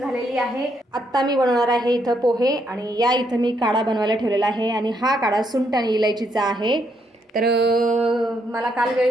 आहे। आता मी बनवणार आहे इथं पोहे आणि या इथं मी काढा बनवायला ठेवलेला आहे आणि हा काढा सुंठ आणि इलायचीचा आहे। तर मला काल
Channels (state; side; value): normal; both; correlation 0.75